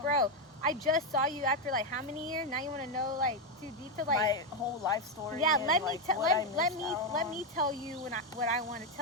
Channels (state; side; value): normal; both; correlation 0.05